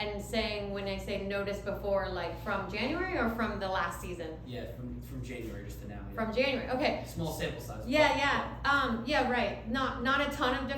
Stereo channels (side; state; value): both; identical; correlation 1.00